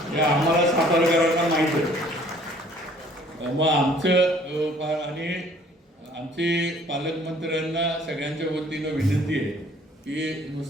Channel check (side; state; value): both; normal; correlation 0.56